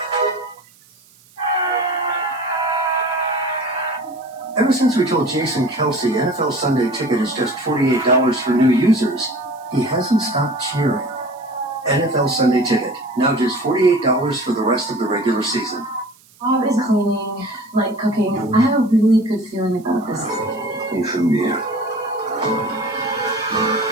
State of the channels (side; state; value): right; noise; hiss, 28 dB below the sound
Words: Ever since we told Jason Kelsey NFL Sunday Ticket is just $48 for new users, he hasn't stopped cheering. NFL Sunday Ticket, now just $48 for the rest of the regular season. Bob is cleaning, like cooking. I have a really good feeling about this.